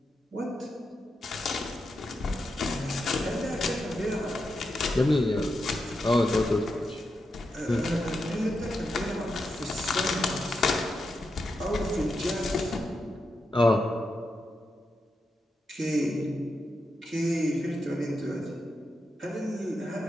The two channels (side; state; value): both; normal; correlation 0.86